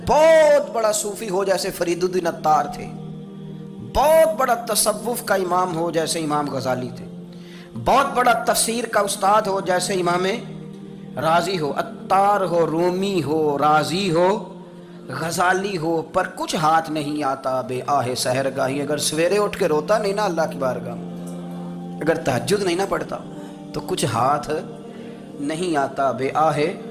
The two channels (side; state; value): both; identical; correlation 1.00